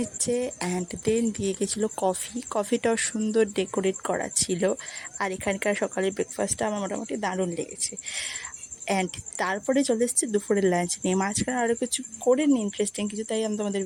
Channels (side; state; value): both; identical; correlation 1.00